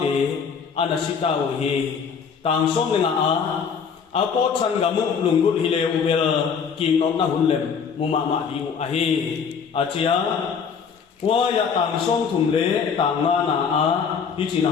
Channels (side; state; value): right; quieter; 6.4 dB